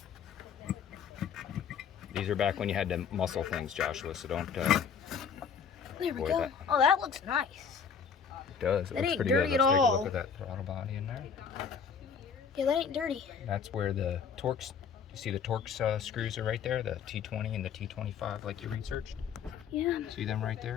These are back when you had to muscle things, Joshua, so don't... There we go. That. Oh, that looks nice. It does. It That looks ain't pretty dirty good. at Let's take a all. look at that throttle body in there. Yeah, that ain't dirty. That's where the Torx, you see the Torx screws are right there, the T20 and the T25 like you researched? Yeah. See them right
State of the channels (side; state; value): right; quieter; 6.7 dB